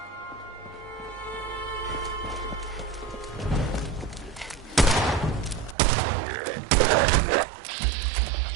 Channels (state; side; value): drops out; left; at 5.8 s